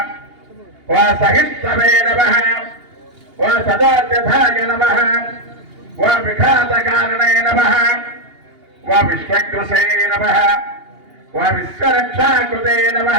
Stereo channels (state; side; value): late; left; 2.8 ms